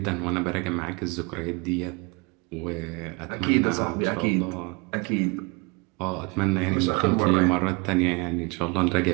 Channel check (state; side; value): quieter; left; 28.9 dB